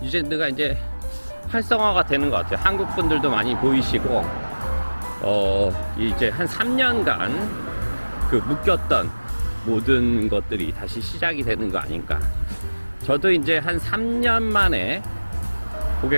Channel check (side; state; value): both; inverted; correlation -1.00